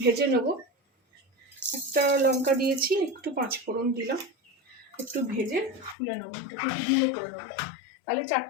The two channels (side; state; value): right; drops out; at 6.0 s